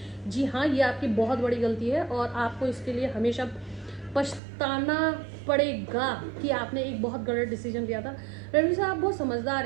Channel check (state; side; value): drops out; left; at 4.4 s